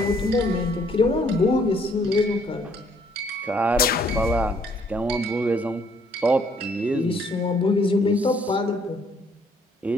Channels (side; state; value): both; normal; correlation 0.65